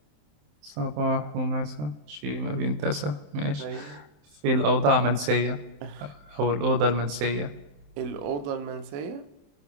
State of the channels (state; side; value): late; left; 27 ms